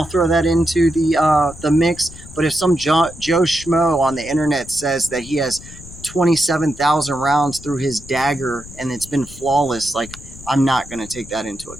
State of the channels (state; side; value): noise; left; rumble, 17 dB below the sound